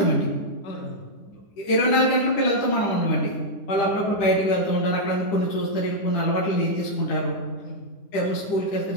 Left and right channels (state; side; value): late; right; 10 ms